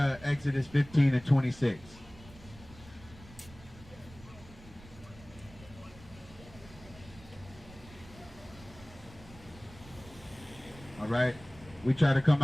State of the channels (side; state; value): right; noise; rumble, 20 dB below the sound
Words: 15 and 26. All right, we try to come